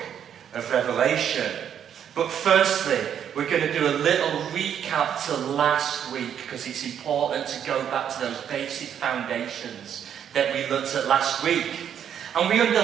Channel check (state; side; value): quieter; left; 9.0 dB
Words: of Revelation. But firstly, we're going to do a little recap to last week because it's important to go back to those basic foundations that we looked at last week. And we